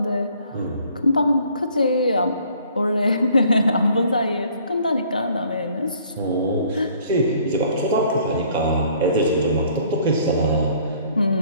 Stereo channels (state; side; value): inverted; both; correlation -0.58